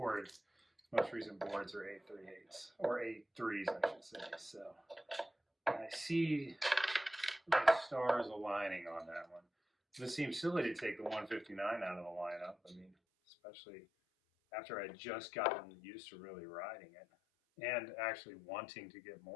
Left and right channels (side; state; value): right; drops out; at 12.9 s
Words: most recent boards, are 838s, or 83s, I should say. So I see the stars aligning on that one. It seems silly to take the 159 out of the lineup. I mean, especially after I just gotten used to really riding it and actually wanting to get